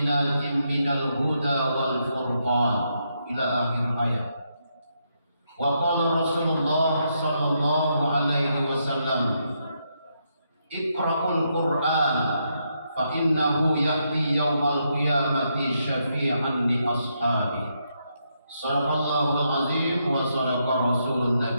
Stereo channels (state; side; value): inverted; both; correlation -0.79